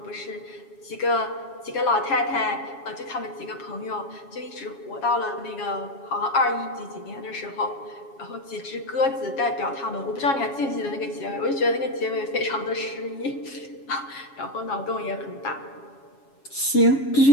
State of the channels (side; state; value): right; late; 7.3 ms